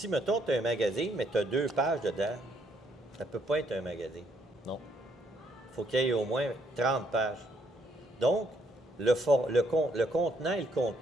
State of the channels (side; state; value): both; normal; correlation 0.71